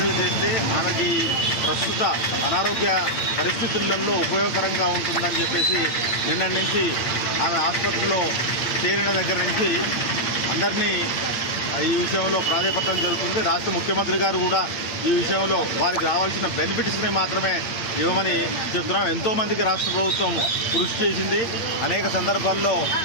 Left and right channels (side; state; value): right; late; 8.9 ms